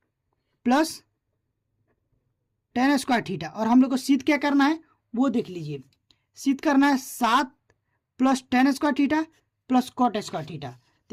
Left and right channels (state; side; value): identical; both; correlation 1.00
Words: plus tan square theta, और हम लोग को सिद्ध क्या करना है वो देख लीजिए, सिद्ध करना है 7 plus tan square theta plus cot square theta,